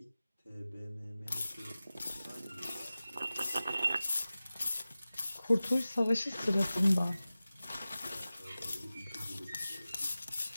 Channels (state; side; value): inverted; both; correlation -0.96